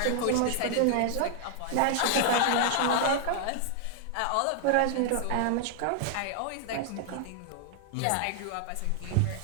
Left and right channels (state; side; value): different; both; correlation 0.00